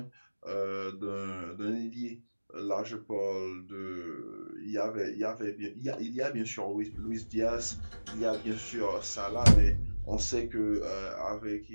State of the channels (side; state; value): both; inverted; correlation -1.00